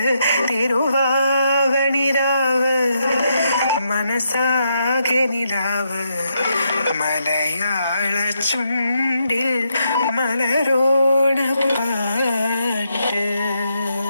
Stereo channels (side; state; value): both; inverted; correlation -0.80